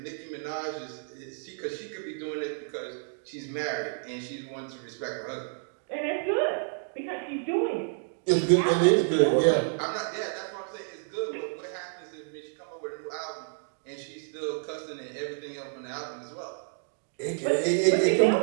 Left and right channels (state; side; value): silent; left; digital silence